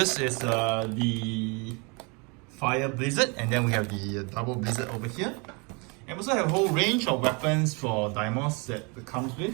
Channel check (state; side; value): quieter; left; 31.0 dB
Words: is the Fire Blizzard, and then we have the Double Blizzard over here. And we also have a whole range of weapons for Daimos that it comes with.